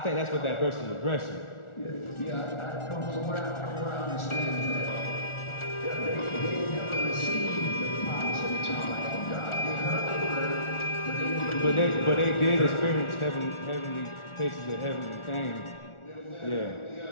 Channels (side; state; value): right; late; 1.4 ms